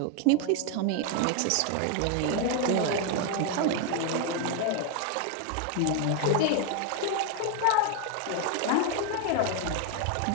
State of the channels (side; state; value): both; different; correlation 0.01